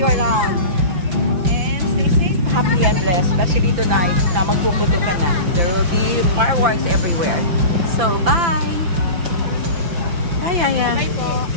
you around. And stay safe, happy and blessed. Especially tonight na magpuputo ka na. There will be fireworks everywhere. So, bye! Bye, Yaya. Bye po.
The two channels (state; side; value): late; left; 5.9 ms